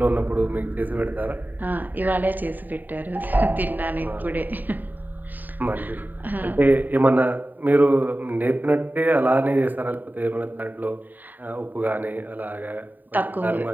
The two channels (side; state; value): left; late; 0.088 ms